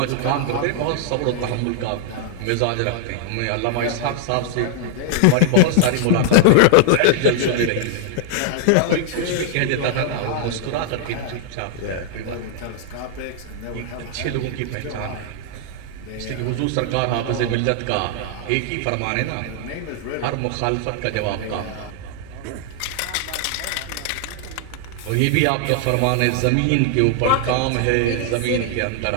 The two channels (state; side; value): different; both; correlation 0.00